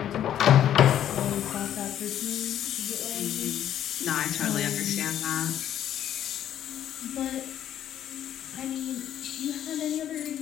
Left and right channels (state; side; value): quieter; right; 10.9 dB